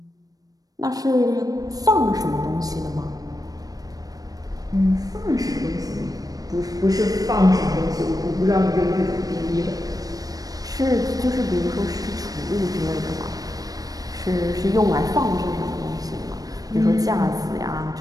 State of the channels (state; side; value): late; left; 0.18 ms